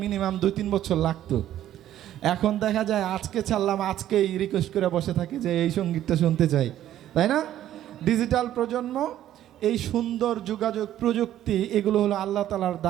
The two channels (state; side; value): quieter; left; 12.2 dB